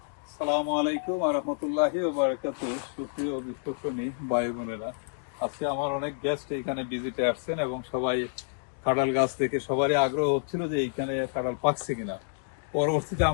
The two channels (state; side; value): silent; right; digital silence